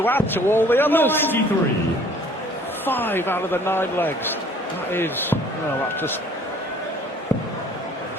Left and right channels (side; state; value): both; normal; correlation 0.54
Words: add to all the others. 93. 5 out of the 9 legs. That is, well, that's just